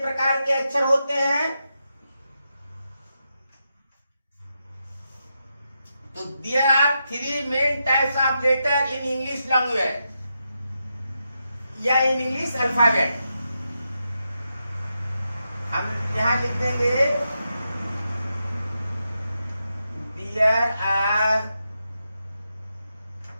के अक्षर होते हैं? तो there are 3 main types of letter in English language या इन इंग्लिश अल्फाबेट। हम यहां लिख देंगे there are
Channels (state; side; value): inverted; both; correlation -0.86